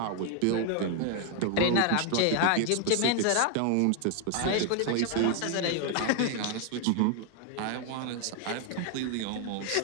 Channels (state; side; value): different; both; correlation 0.00